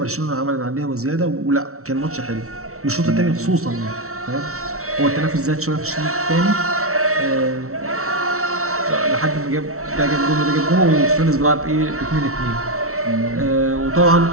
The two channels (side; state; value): left; late; 0.63 ms